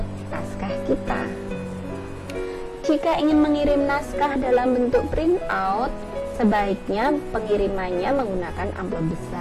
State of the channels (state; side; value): identical; both; correlation 1.00